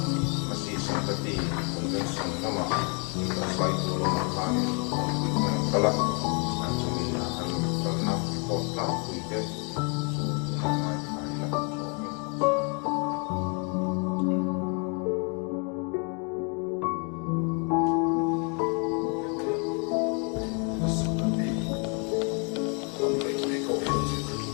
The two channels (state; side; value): quieter; right; 36.5 dB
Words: masih sangkati convention nama kita sai dulu makani kala langsung akan karena kota tuite